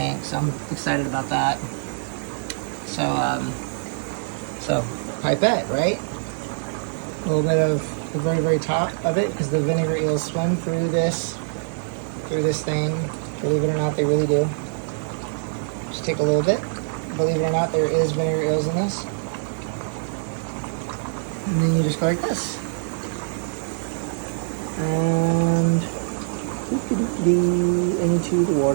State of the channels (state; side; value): silent; left; 63 dB below the other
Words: so I'm excited about that. So pipette, right? A little bit of the very, very top of it, because the vinegar eels swim through this thing. Believe it or not, they really do. Just take a little bit. Believe it or not, there is vinegar eels in this. And then you just go like this. And into the